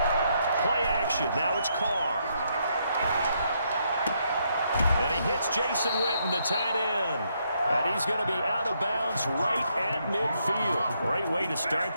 Play action. Now it's Carr. And he hits Jason Witten, the tight end. And he's going to be out of bounds right at midfield. Great way to start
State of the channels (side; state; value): both; inverted; correlation -0.75